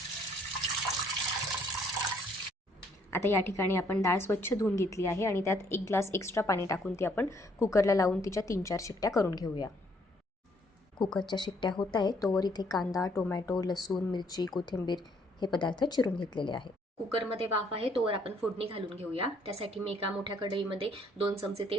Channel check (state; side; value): normal; both; correlation 0.66